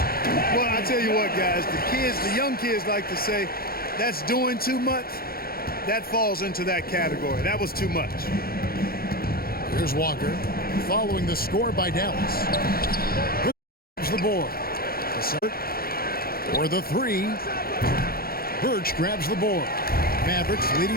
Well, I tell you what, guys, the young kids like to say, that's doing too much. That falls into that category. That was too much. Here's Walker following the score by Dallas. Here's the board. For the 3. Birch grabs the board. Mavericks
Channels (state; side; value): late; right; 0.44 ms